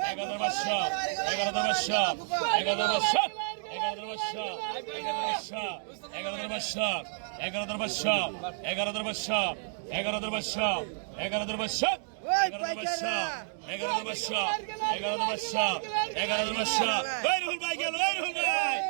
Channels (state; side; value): silent; left; digital silence